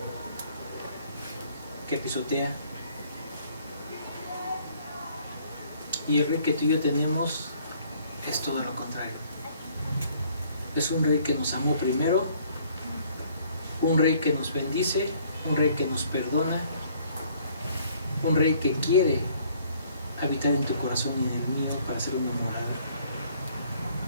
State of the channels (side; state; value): both; inverted; correlation -0.60